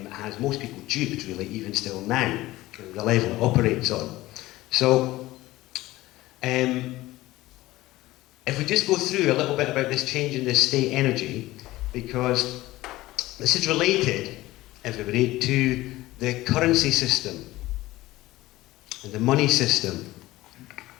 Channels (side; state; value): right; quieter; 17.6 dB